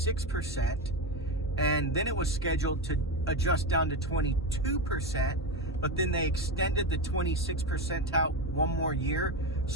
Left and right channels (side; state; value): both; normal; correlation 0.15